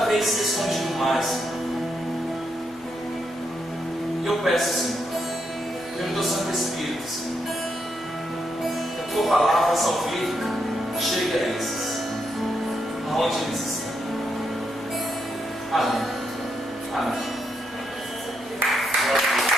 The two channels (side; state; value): left; noise; hum, 27 dB below the sound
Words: vez se escondido mais, Senhor. Eu peço, Senhor, pelo Teu Santo Espírito, Senhor, que a Tua palavra salvífica chegue a esses, aonde eles estão. Amém. Amém.